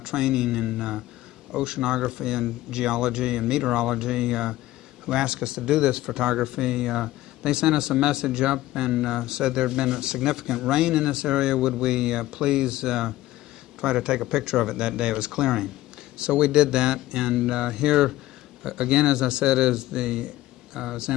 training in oceanography and geology and meteorology, who asked us to do this photography, they sent us a message up and said there had been a significant rain in this area. Would we please try to take a picture of it that day? It was clearing. So we did that, and here again, as I said, is the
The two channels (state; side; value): quieter; right; 16.0 dB